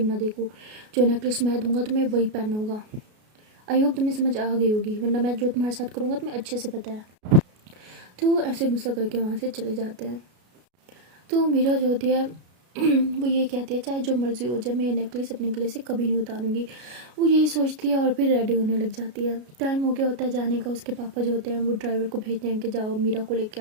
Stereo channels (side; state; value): left; late; 33 ms